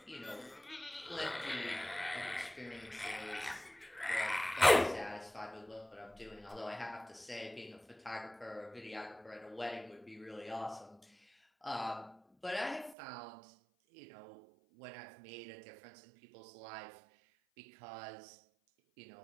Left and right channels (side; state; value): left; drops out; at 13.0 s